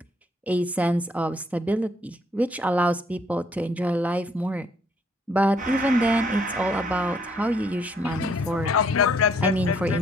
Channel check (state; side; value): normal; both; correlation 0.66